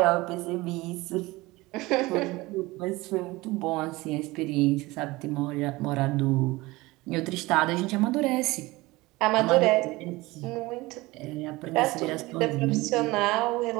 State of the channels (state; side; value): quieter; left; 20.9 dB